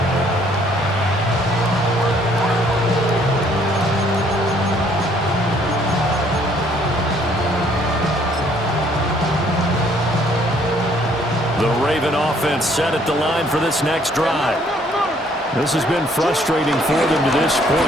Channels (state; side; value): normal; both; correlation 0.63